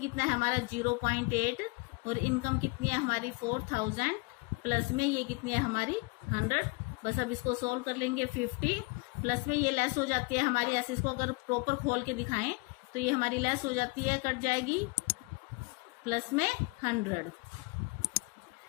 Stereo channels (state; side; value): quieter; right; 28.0 dB